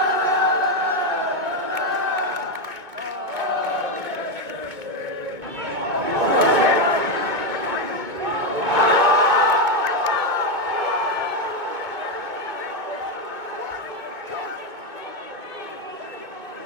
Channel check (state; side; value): late; left; 2.1 ms